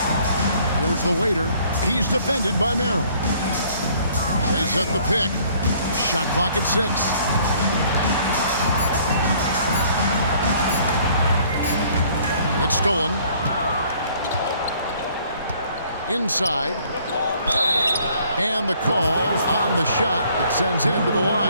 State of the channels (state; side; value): inverted; both; correlation -0.59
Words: Here's the waiter. He's defended by Merrill. They set the pick. Shot clock at 6. It's stolen. Inside. And the call on the shot that sends him to the